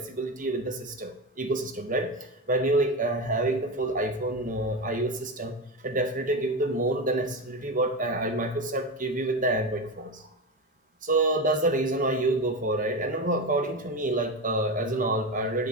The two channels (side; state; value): both; normal; correlation 0.19